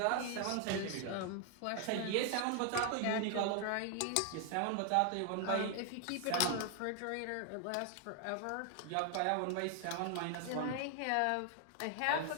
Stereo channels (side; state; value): both; different; correlation 0.00